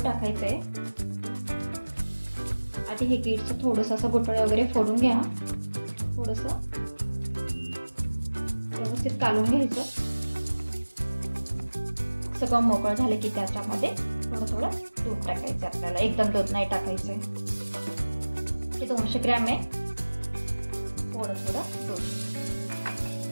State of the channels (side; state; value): both; inverted; correlation -1.00